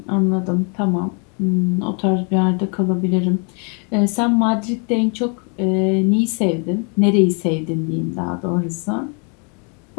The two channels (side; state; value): right; quieter; 37.9 dB